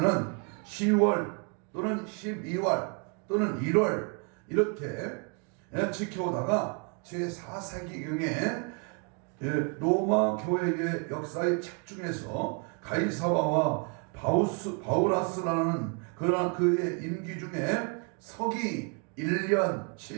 10월 또는 12월 또는 1월 이렇게 지켜오다가 제4세기경에 로마 교회의 역사의 책 중에서 가이사바와 바우라스라는 그의 임기 중에 서기 1년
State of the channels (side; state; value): left; quieter; 36.7 dB